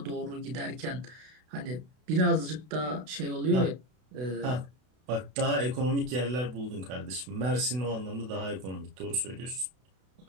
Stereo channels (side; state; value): left; late; 32 ms